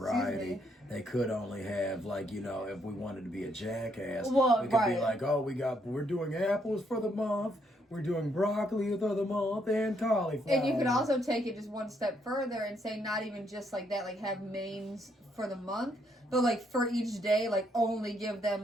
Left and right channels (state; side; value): normal; both; correlation 0.73